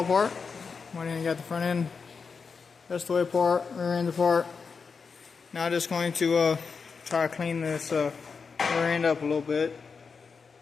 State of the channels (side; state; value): right; quieter; 5.3 dB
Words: apart. Went in and got the front end rest of the way apart, rear end apart. Now just going to try to clean this rear end up a little bit.